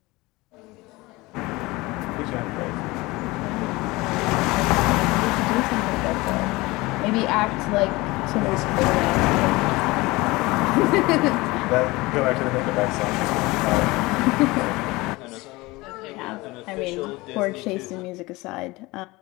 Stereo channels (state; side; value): quieter; right; 21.8 dB